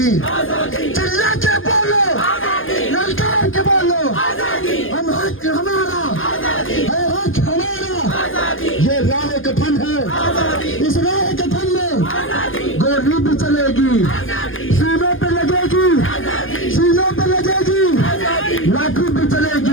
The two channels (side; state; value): right; late; 0.59 ms